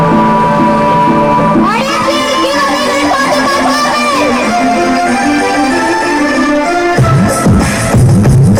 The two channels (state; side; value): identical; both; correlation 1.00